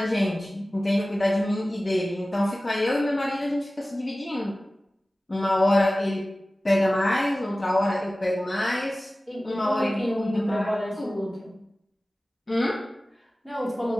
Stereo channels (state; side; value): normal; both; correlation 0.97